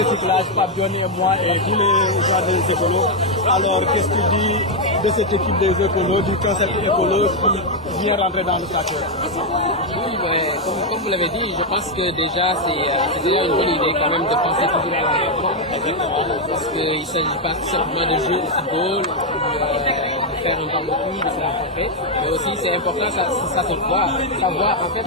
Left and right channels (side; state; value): both; normal; correlation 0.01